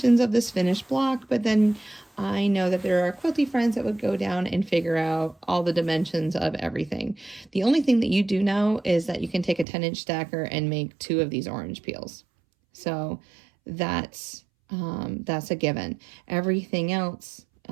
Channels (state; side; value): drops out; left; at 9.7 s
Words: of this finished block, but then I know that there are quilty friends that would go down and figure out all the dimensions of everything. The only thing that you do know is that you can take a 10-inch stacker and make 2 of these orange peels. So that's a given. Everything else,